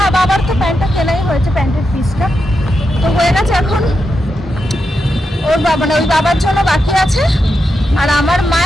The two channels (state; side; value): normal; both; correlation 0.86